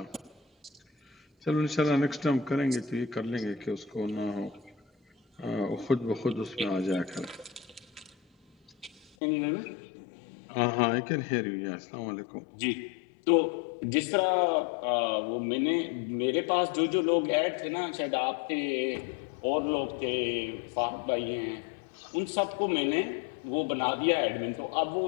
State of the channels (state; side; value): drops out; right; at 9.1 s